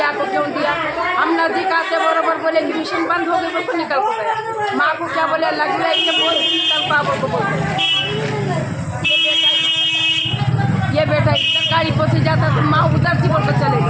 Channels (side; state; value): both; identical; correlation 1.00